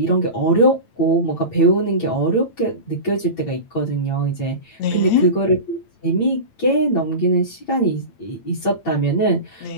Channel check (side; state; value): right; late; 8.9 ms